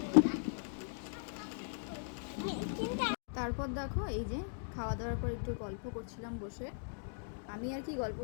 তারপর দেখো এই যে খাওয়া দাওয়ার পর একটু গল্প করছিলাম বসে। আমি আর কি গল্প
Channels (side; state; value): right; silent; digital silence